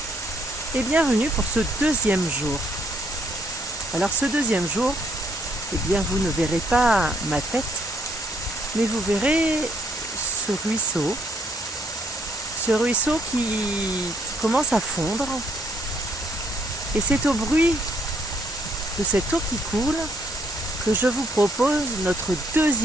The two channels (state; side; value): normal; both; correlation 0.70